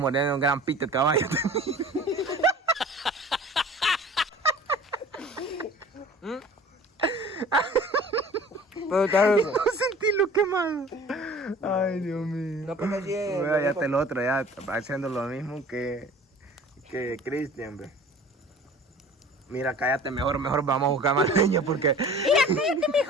un gran pito de caballo. Pero está rico. No sentí lo quemado. Ay, Dios mío. No, porque así es. Mira, ya está el otro, ya haciendo lo mismo que Cristian, ve. Mira, cállate, mejor vamos a buscar más leña porque...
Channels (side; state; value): both; normal; correlation 0.45